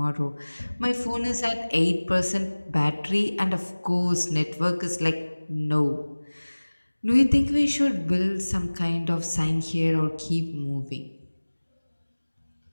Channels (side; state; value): both; inverted; correlation -1.00